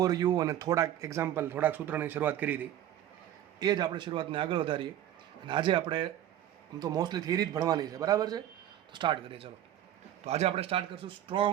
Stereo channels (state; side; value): quieter; left; 11.8 dB